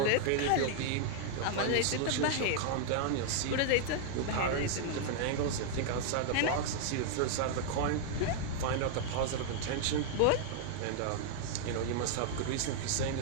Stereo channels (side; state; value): both; different; correlation 0.00